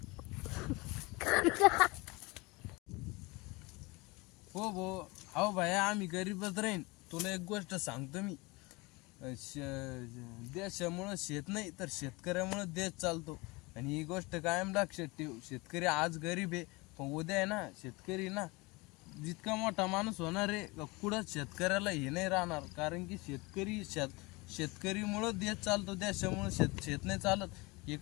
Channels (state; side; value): quieter; right; 24.8 dB